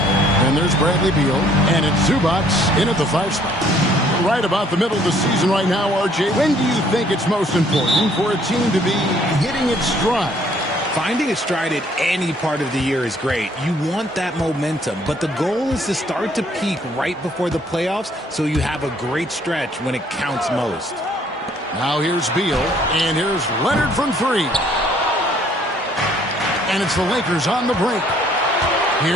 And there's Bradley Beal. And it's Zubac in at the 5 spot. Right about the middle of the season right now, RJ. When do you think it's most important for a team to be hitting its stride? Finding its stride at any part of the year is great. You want that momentum, but the goal is to start to peak right before the playoffs so you have a great stretch when it counts most. Now here's Beal, and here's Leonard from 3. And it's the Lakers on the brink.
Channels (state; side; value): normal; both; correlation 0.62